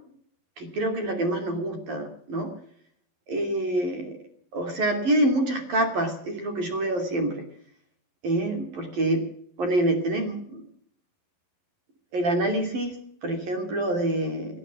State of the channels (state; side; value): late; left; 11 ms